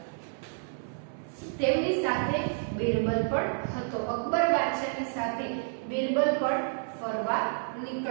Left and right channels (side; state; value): left; silent; 58 dB below the other